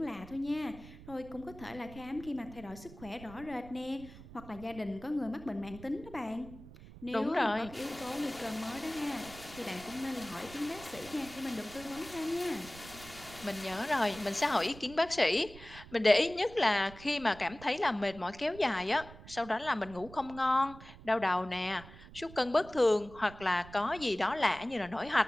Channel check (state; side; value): noise; right; rumble, 17 dB below the sound